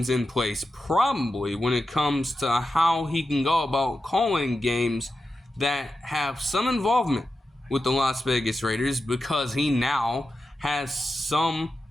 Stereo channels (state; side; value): normal; both; correlation 0.90